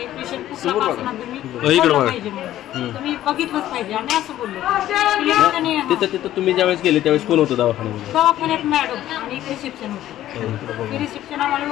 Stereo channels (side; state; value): right; quieter; 13.2 dB